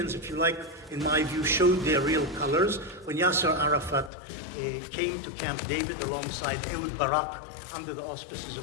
if you like, in my view, showed their real colors, when Yasser Arafat came to Camp David alongside Ehud Barak under the auspices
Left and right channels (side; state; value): right; drops out; at 4.1 s